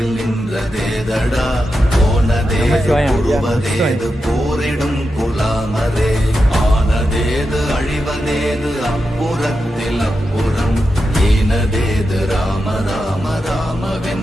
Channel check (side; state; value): both; normal; correlation 0.89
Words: நின்றதேதடா, போனதேது உருவதேது போரிடும் குலாமரே, ஆனதேது அழிவதேது அப்புறத்தில் அப்புறம், ஈனதேது ராம ராம ராம